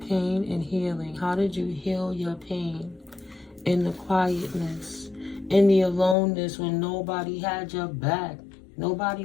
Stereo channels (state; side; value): drops out; right; at 6.2 s